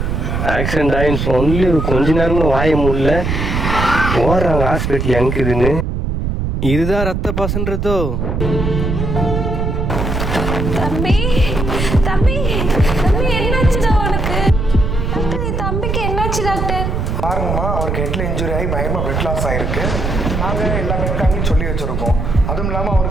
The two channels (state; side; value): noise; right; rumble, 1 dB below the sound